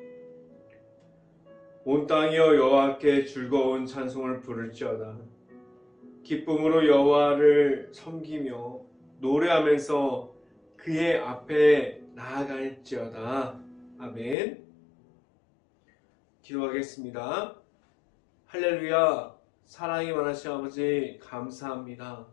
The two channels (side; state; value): right; drops out; at 14.4 s